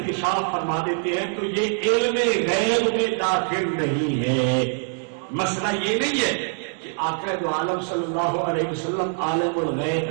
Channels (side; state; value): left; silent; 63 dB below the other